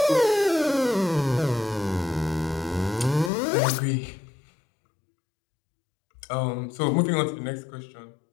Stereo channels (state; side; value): drops out; right; at 3.3 s